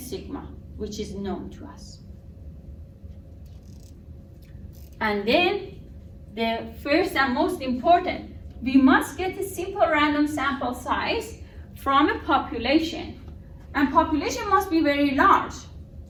which is known to us. And then the first and most important, we must get a simple random sample size from a population. And population must be very large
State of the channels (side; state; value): both; identical; correlation 1.00